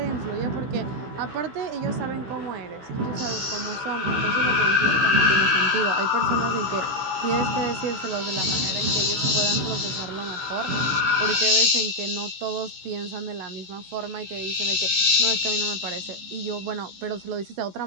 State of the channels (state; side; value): late; left; 16 ms